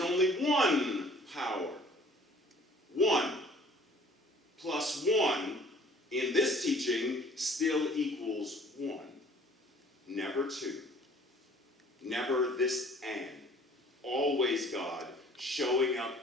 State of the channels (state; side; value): normal; both; correlation 0.53